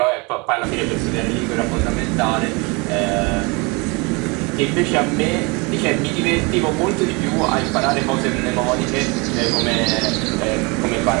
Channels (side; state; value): left; quieter; 28.4 dB